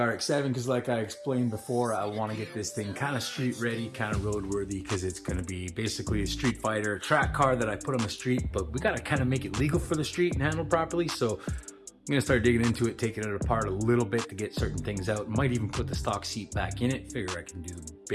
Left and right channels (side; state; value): both; identical; correlation 1.00